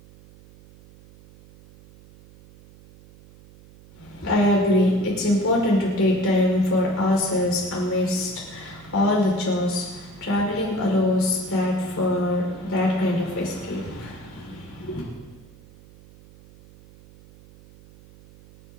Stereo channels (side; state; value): right; noise; hum, 23 dB below the sound